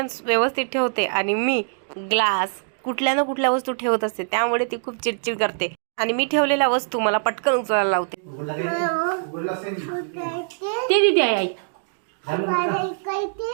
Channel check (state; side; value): silent; left; digital silence